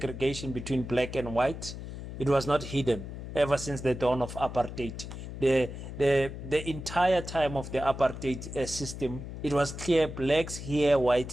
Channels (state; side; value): noise; left; hum, 9 dB below the sound